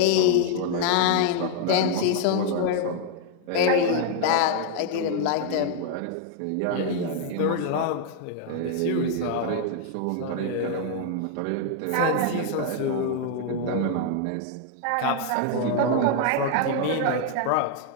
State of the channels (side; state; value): both; different; correlation 0.00